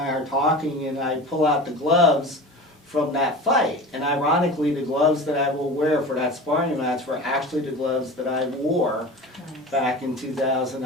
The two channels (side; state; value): both; normal; correlation 0.34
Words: are talking, and I pull out the gloves from that fight. And ironically, the gloves that I will wear for that sparring match were actually the gloves that I wore back in 2000,